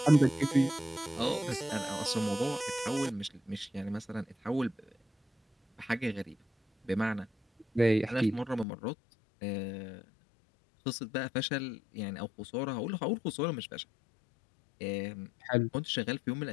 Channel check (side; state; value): right; drops out; at 8.7 s